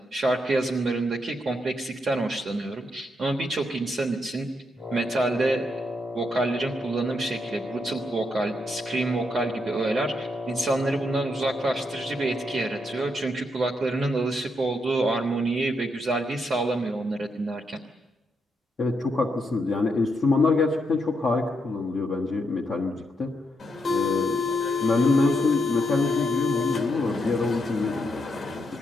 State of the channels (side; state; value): both; normal; correlation 0.79